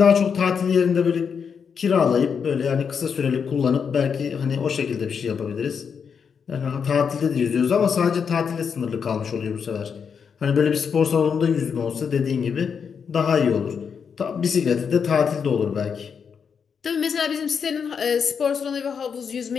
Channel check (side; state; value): right; quieter; 6.6 dB